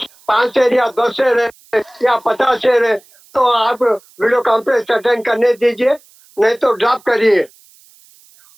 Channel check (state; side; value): noise; right; hiss, 29 dB below the sound